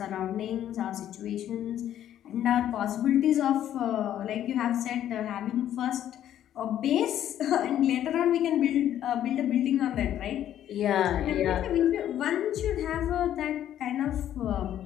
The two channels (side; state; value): right; quieter; 11.2 dB